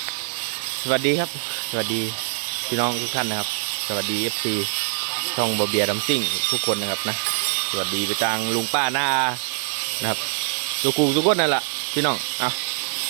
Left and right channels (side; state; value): left; silent; 58 dB below the other